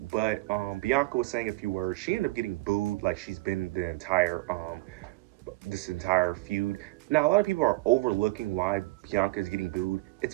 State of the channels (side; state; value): left; quieter; 21.9 dB